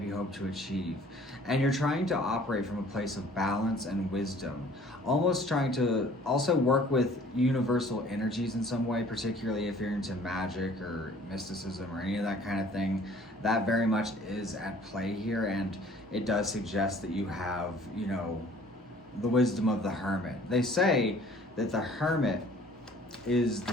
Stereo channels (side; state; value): both; normal; correlation 0.53